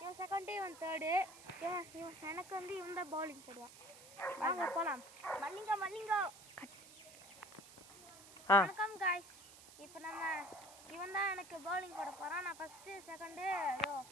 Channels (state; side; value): noise; right; hiss, 18 dB below the sound